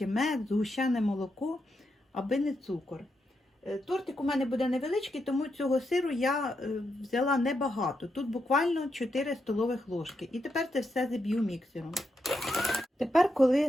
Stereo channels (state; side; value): normal; both; correlation 0.83